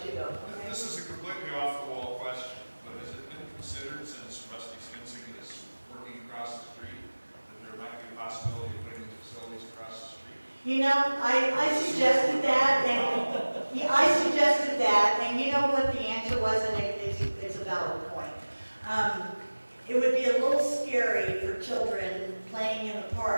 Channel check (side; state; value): both; inverted; correlation -1.00